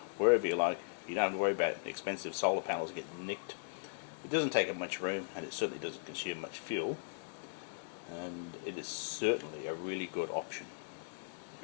wherever you like. You don't have to worry about expensive solar panels getting nicked. It doesn't take up much room, and it certainly doesn't consume much fuel. And it is certainly a really good option.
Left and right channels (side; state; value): right; silent; digital silence